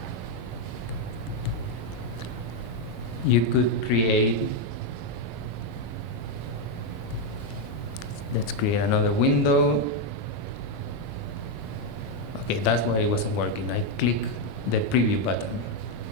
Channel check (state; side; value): late; right; 6.4 ms